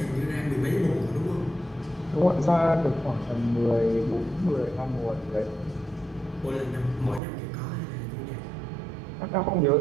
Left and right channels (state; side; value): drops out; left; at 7.2 s